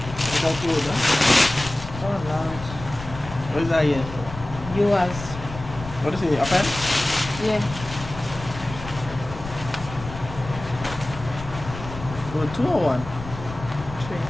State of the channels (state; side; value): noise; left; rumble, 11 dB below the sound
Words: without you, huh? Oh Lord. What is that here? Yours. What is it? A pen? Yeah. Or 2 or 1?